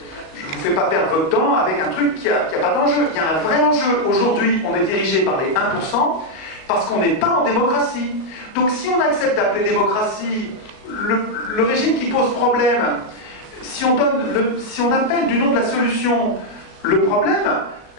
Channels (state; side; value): late; right; 37 ms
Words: vous fais pas perdre votre temps avec un truc qui a pas d'enjeu. Il y a un vrai enjeu. Aujourd'hui, on est dirigé par les 1% parce qu'on n'est pas en démocratie. Donc si on accepte d'appeler démocratie le régime qui pose problème, si on appelle du nom de la solution le problème,